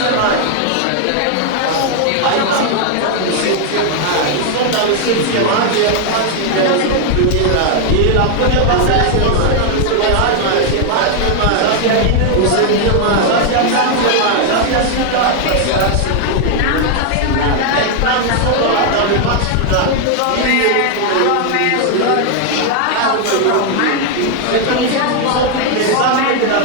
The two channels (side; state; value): both; different; correlation 0.00